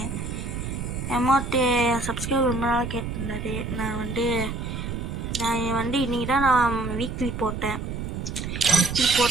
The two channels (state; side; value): noise; right; rumble, 5 dB below the sound